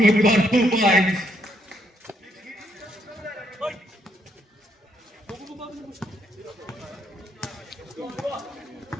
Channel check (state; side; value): normal; both; correlation 0.73